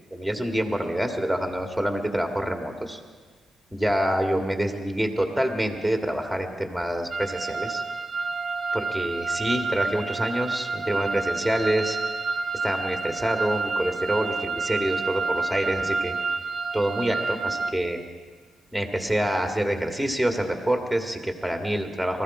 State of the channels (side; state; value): both; normal; correlation 0.94